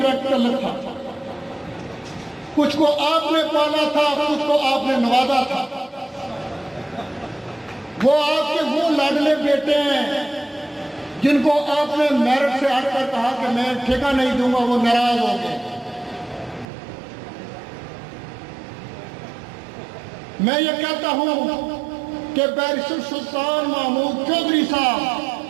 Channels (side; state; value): left; drops out; at 16.7 s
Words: ताल्लुक था। कुछ को आपने पाला था, कुछ को आपने नवाजा था। वो आपके वो लाडले बेटे हैं जिनको आपने मेरिट से हटकर कहा कि मैं ठेका नहीं दूंगा, वो नाराज हो गए। मैं ये कहता हूं कि बैरिस्टर सुल्तान महमूद चौधरी साहब,